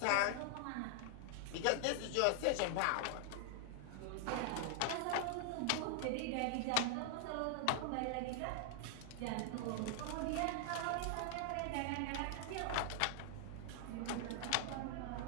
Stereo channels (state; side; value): different; both; correlation 0.00